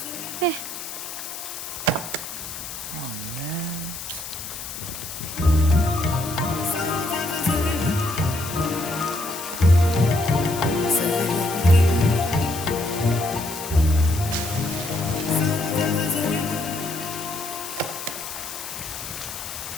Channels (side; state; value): left; noise; hiss, 9 dB below the sound